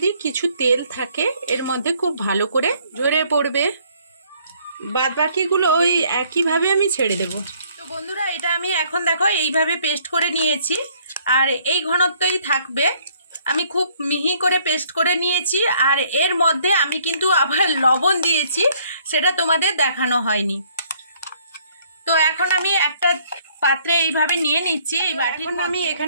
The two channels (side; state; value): both; inverted; correlation -0.63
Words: কিছু তেল থাকে এর মধ্যে খুব ভালো করে ঝরে পড়বে, বাদ বাকিগুলো ওই একইভাবে আমি ছেড়ে দেব। তো বন্ধুরা এটা আমি এখন দেখো এইভাবে পেস্ট করে নিয়েছি, আর এই ঘনত্বই থাকবে। আমি খুব মিহি করে পেস্ট করে নিয়েছি, আর এর মধ্যে আমি কিন্তু আবার লবণ দিয়েছি, সেটা তোমাদের দেখানো হয়নি। তো এখন আমি একটা পাত্রে এইভাবে নিয়ে নিচ্ছি এই বাটির। আমি